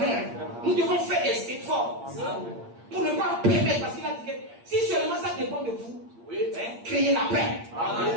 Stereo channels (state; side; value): late; left; 8.6 ms